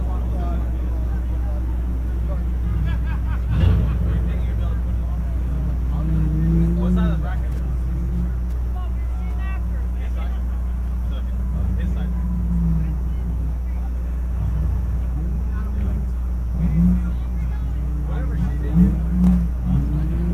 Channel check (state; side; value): identical; both; correlation 1.00